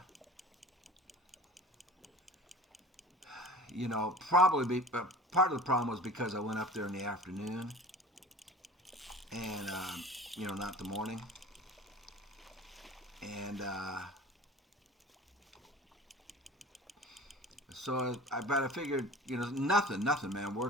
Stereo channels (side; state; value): both; normal; correlation 0.41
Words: you know, probably part of the problem was because I went up there in the afternoon and you know, not the morning, and so I figured, you know, nothing, man.